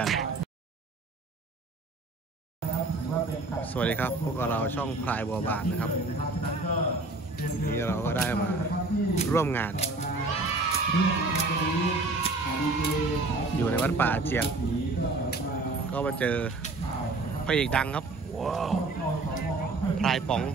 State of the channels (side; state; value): left; quieter; 3.3 dB